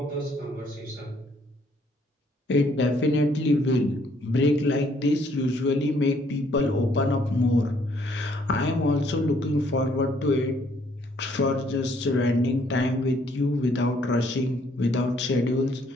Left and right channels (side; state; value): both; normal; correlation 0.65